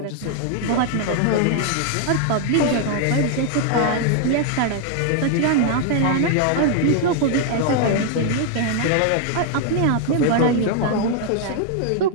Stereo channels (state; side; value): different; both; correlation 0.00